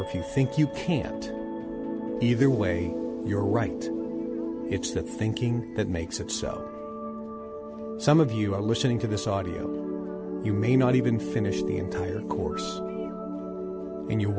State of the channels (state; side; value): identical; both; correlation 1.00